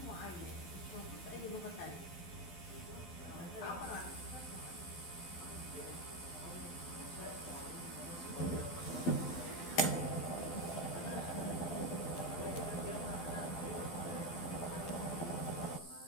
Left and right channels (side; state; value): right; late; 12 ms